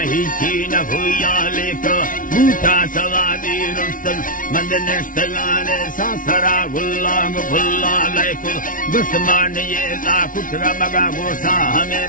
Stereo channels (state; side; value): late; right; 0.39 ms